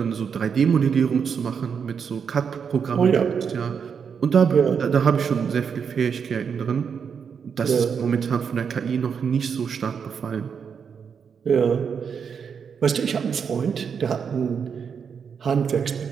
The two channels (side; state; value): left; quieter; 6.7 dB